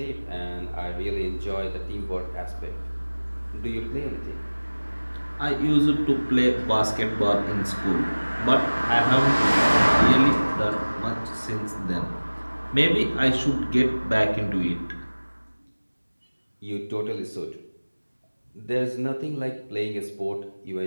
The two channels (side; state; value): both; inverted; correlation -1.00